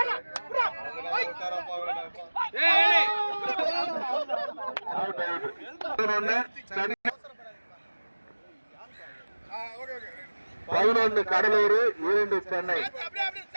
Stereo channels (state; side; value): inverted; both; correlation -1.00